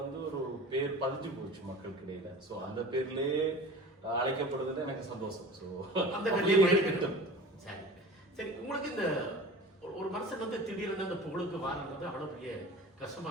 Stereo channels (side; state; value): both; normal; correlation 0.39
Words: ஒரு பேர் பதிஞ்சு போச்சு மக்களுக்கு இடையில. ஸோ அந்த பேர்லயே அழைக்கப்படுறதுல எனக்கு சந்தோஷம். ஸோ அந்த பேர்லயே சரி சரி. உங்களுக்கு இந்த ஒரு மனுஷன் திடீர்னு அந்த புகழுக்கு வாரன்றது அவ்வளவு பெரிய